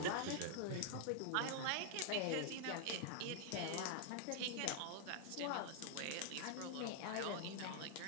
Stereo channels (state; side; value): different; both; correlation 0.00